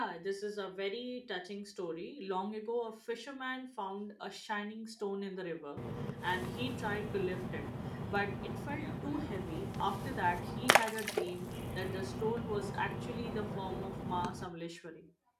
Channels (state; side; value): identical; both; correlation 1.00